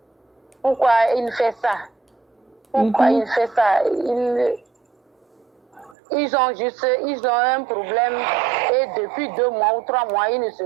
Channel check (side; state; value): left; drops out; at 6.0 s